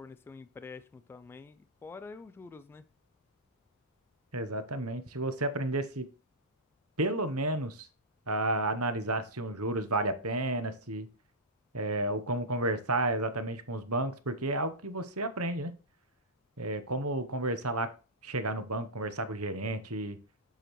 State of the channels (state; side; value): normal; both; correlation -0.14